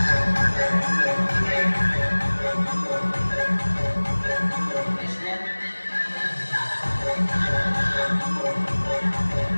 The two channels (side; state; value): both; inverted; correlation -1.00